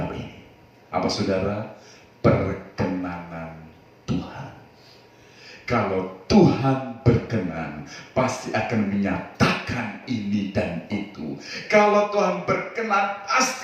ini. Apa saudara? Perkenanan Tuhan. Kalau Tuhan berkenan, pasti akan menyatakan ini dan itu. Kalau Tuhan berkenan,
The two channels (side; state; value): both; identical; correlation 1.00